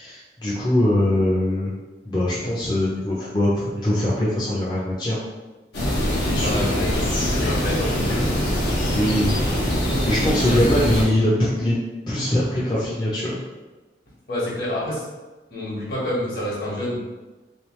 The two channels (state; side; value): normal; both; correlation 0.76